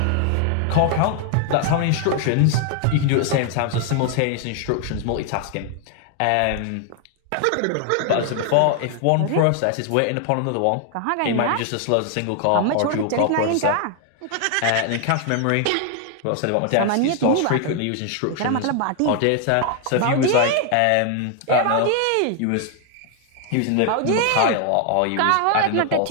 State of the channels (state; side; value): different; both; correlation 0.00